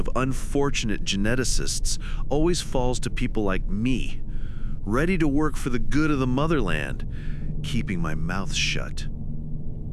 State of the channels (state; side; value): identical; both; correlation 1.00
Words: unfortunate geneticists always falls to people like me, ready to work for the good of the motherland, keeping my mouth shut.